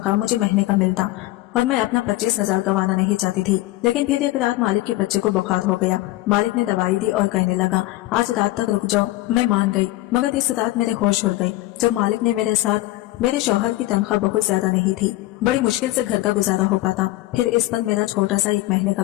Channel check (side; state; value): right; quieter; 17.7 dB